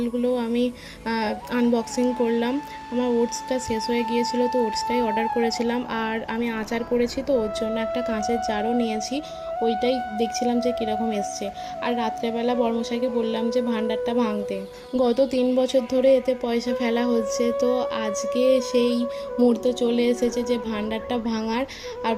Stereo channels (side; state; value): both; identical; correlation 1.00